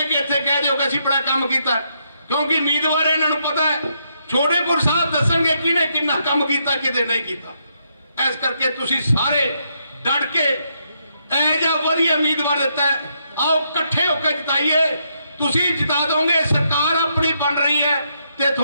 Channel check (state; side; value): inverted; both; correlation -0.77